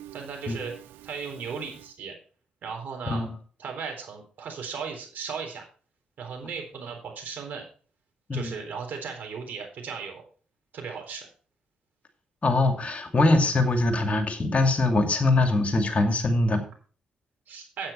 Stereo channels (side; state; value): both; normal; correlation 0.73